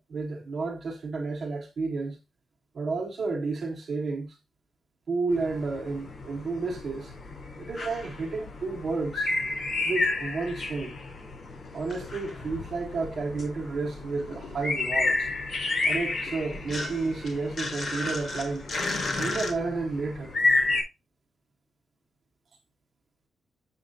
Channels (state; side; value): normal; both; correlation 0.85